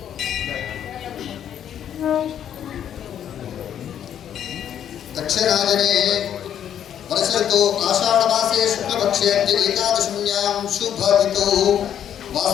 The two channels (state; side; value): quieter; right; 9.7 dB